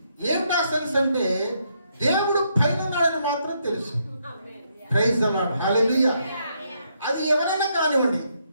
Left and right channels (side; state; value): both; inverted; correlation -0.76